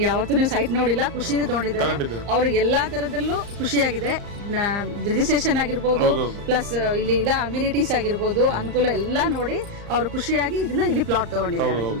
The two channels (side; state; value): left; late; 35 ms